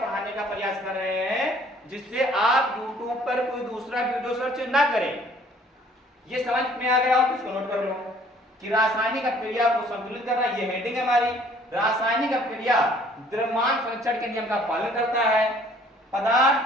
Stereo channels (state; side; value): normal; both; correlation 0.57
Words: का प्रयास कर रहे हैं जिससे आप YouTube पर कोई दूसरा वीडियो सर्च ना करें। ये समझ में आ गया हो? इसको नोट कर लो कि रासायनिक अपक्रिया को संतुलित करना, ये हेडिंग है हमारी। रासायनिक अपक्रिया द्रव्यमान संरक्षण के नियम का पालन करता है।